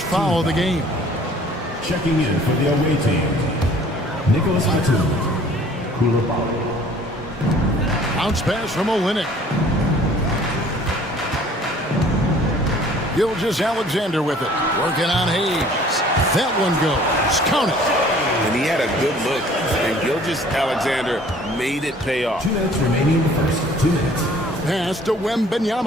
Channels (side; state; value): both; normal; correlation 0.53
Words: foul of the game. Checking in for the away team, Nicholas Batum. Bounce pass from Olynyk. Gilgeous Alexander with it. Working on Hayes. That one goes. Count it. And he had a good look. And Gilgeous Alexander made it pay off. 2 minutes remaining in the first. 2 minutes. Pass to